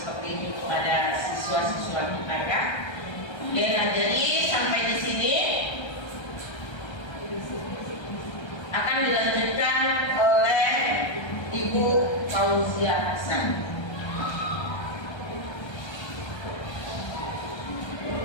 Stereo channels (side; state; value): right; late; 1.3 ms